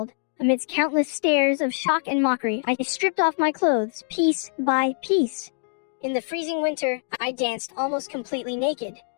Amidst countless stares of shock and mockery, I stripped off my clothes piece by piece. In the freezing winter, I danced almost completely naked.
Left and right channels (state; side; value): silent; right; digital silence